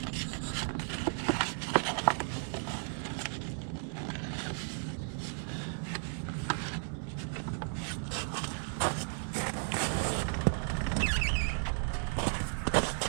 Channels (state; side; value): silent; left; 55 dB below the other